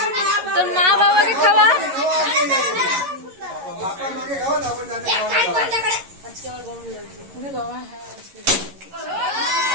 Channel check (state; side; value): late; left; 11 ms